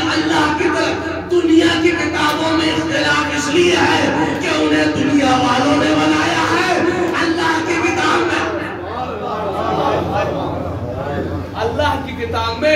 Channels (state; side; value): identical; both; correlation 1.00